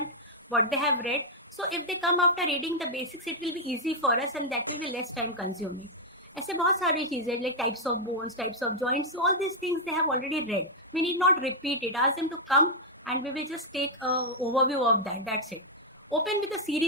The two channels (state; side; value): normal; both; correlation -0.02